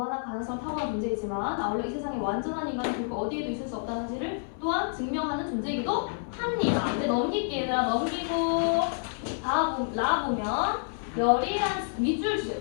가능성을 타고난 존재이지만 아울러 이 세상에 완전한 인간은 결국 어디에도 있을 수 없다는 사실을 또한 증명하는 존재이기도 합니다. 근데 넘길게 얘들아. 넘기고 라 보면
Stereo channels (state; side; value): silent; right; 59 dB below the other